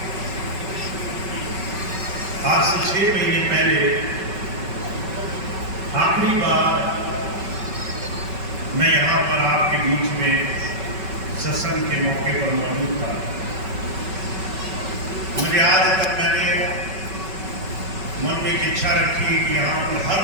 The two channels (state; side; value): late; left; 5.3 ms